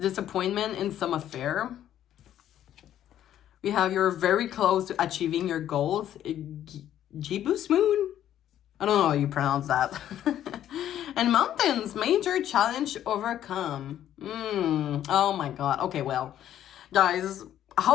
in some affair. We have you're very close to achieving your goals. Jibus Moon? I don't know how you pronounce that. And Mountains, major challenge overcome. Oh my God. Okay, well, guys,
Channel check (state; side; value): quieter; right; 11.3 dB